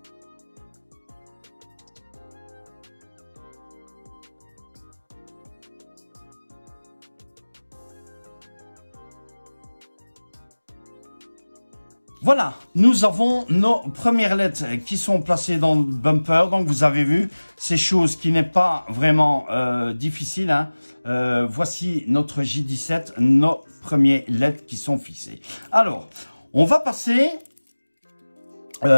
Voilà, nous avons nos premières LED qui sont placées dans le bumper. Donc, vous avez vu, c'est chose qui n'est pas vraiment difficile. Hein. Voici notre J17, nos premiers LED qui sont fixés. Alors, on va passer,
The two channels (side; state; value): both; inverted; correlation -1.00